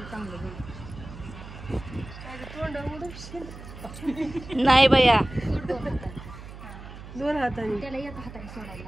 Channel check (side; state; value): right; noise; hum, 14 dB below the sound